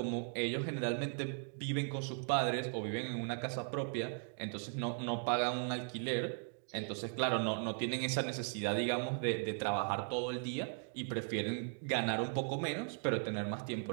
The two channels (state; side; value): silent; left; 53 dB below the other